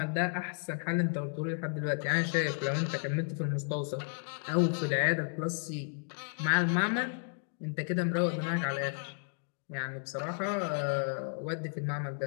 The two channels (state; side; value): silent; right; digital silence